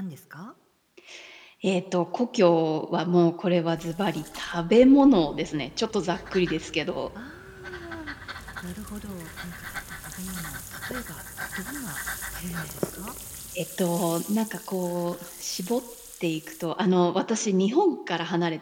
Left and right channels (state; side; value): identical; both; correlation 1.00